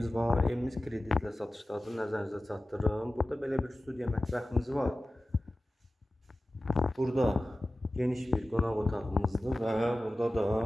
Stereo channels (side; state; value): both; normal; correlation 0.96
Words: var. Evimiz kreditlə satışdadır. Nəzərinizə çatdırırım. Burada belə bir studiya mətbəximiz var. Burada geniş bir qonaq otağımızdır və burada da